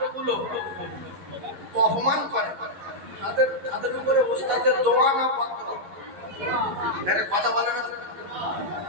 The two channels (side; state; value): left; late; 11 ms